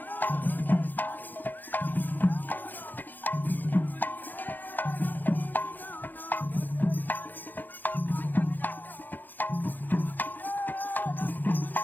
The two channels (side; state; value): right; late; 0.087 ms